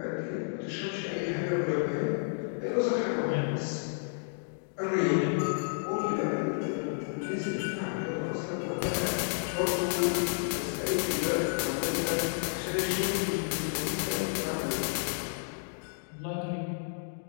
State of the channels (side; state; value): right; silent; digital silence